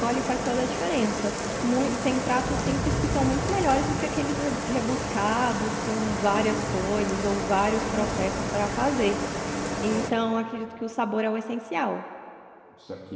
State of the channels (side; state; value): both; identical; correlation 1.00